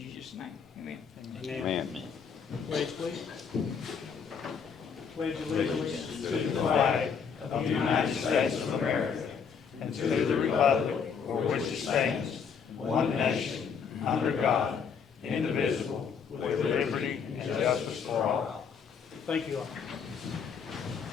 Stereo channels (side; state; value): right; quieter; 6.5 dB